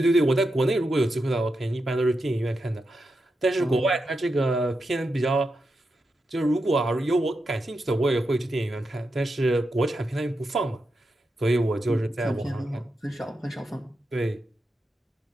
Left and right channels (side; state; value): both; normal; correlation 0.87